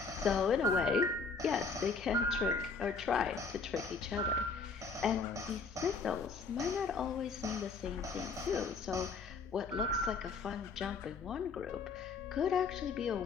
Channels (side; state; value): right; quieter; 4.6 dB